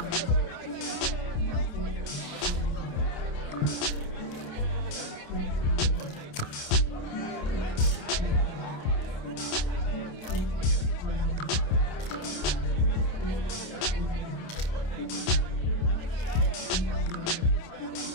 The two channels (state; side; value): late; right; 28 ms